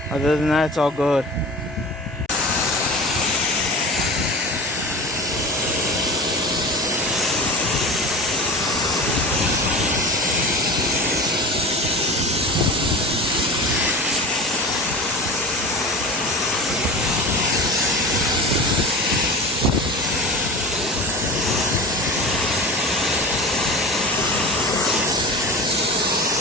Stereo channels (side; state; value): both; normal; correlation 0.33